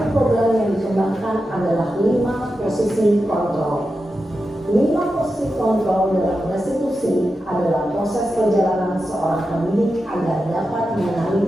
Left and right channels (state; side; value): normal; both; correlation 0.90